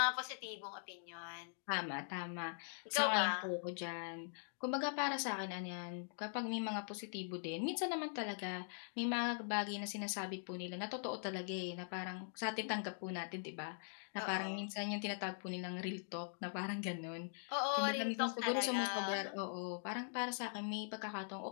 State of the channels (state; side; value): silent; right; digital silence